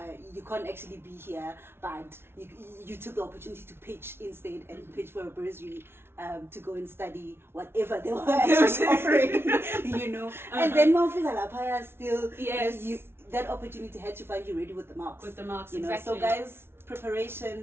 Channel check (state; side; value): late; left; 0.12 ms